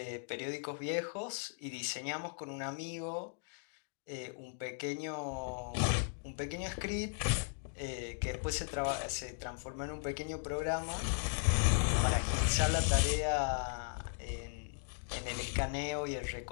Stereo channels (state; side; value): silent; right; digital silence